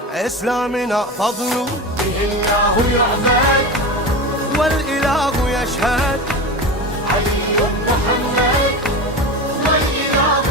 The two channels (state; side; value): normal; both; correlation 0.25